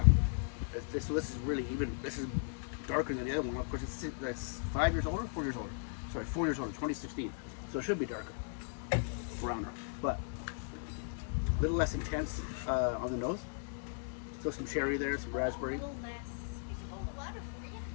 So this is really even... This is darker than the other one. Of course, that's 5 years older? 4 years older. Sorry, 4 years older, 2016. So it should be darker. Browner. But a little less intense on the nose. Still some cherry there, some raspberry. A little less. A whole water for you.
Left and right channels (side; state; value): right; silent; digital silence